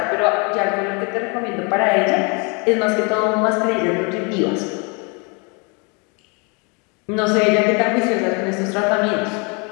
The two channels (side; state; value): right; quieter; 32.3 dB